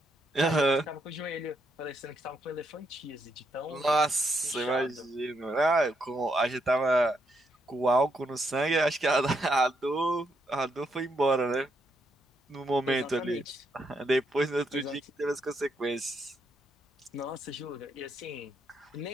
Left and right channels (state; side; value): normal; both; correlation 0.78